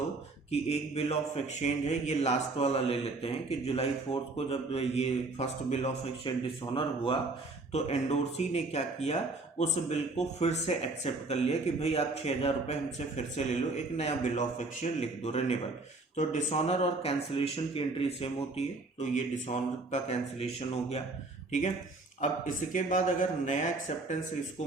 कि एक बिल ऑफ एक्सचेंज है, ये लास्ट वाला ले लेते हैं कि जुलाई 4 को जब ये first bill of exchange dishonour हुआ तो एंडोर्सी ने क्या किया, उस बिल को फिर से एक्सेप्ट कर लिया कि भाई आप 6,000 रुपये हमसे फिर से ले लो, एक नया बिल ऑफ एक्सचेंज लिख दो, रिन्यूअल। तो डिसऑनर और कैंसिलेशन की एंट्री सेम होती है, तो ये डिसऑनर का कैंसिलेशन हो गया, ठीक है। अब इसके बाद अगर नया एक्सेप्टेंस इसको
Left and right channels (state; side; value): quieter; left; 3.3 dB